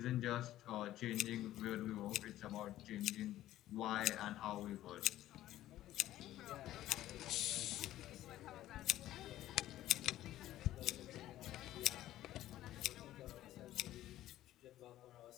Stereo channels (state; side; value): quieter; right; 14.0 dB